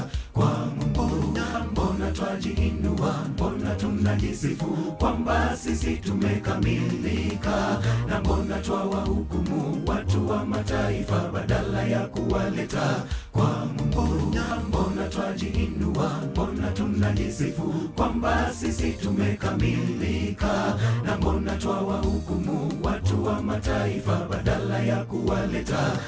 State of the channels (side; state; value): both; identical; correlation 1.00